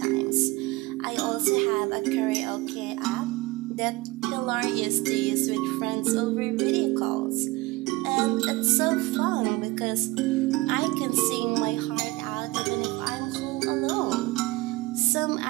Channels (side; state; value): left; quieter; 21.0 dB